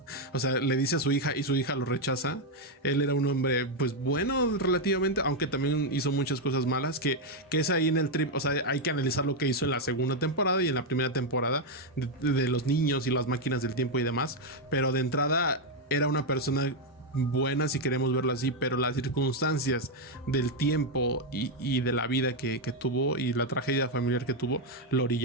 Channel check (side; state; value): both; normal; correlation 0.03